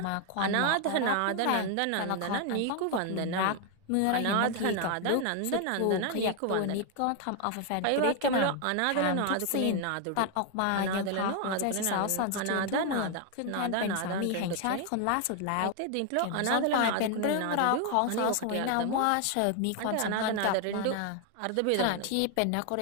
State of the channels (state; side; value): different; both; correlation 0.01